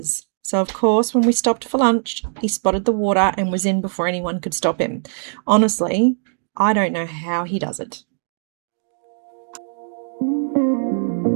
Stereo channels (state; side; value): silent; left; digital silence